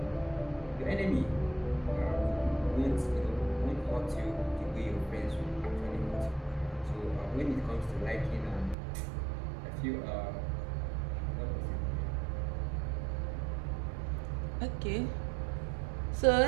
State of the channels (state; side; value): drops out; left; at 8.8 s